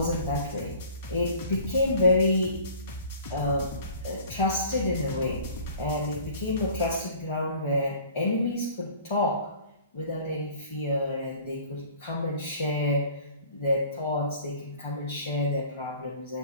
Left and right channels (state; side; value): inverted; both; correlation -0.48